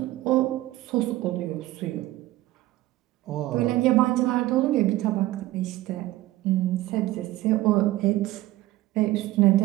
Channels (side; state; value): left; quieter; 16.6 dB